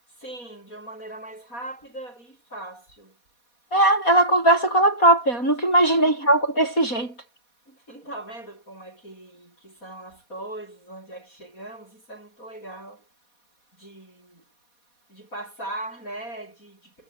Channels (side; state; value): right; late; 4.2 ms